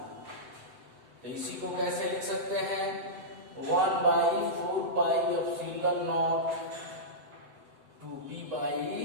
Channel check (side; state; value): left; late; 7.9 ms